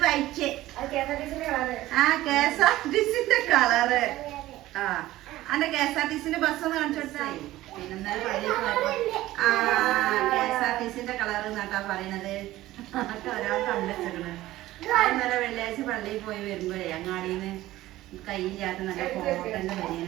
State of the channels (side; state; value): left; quieter; 16.1 dB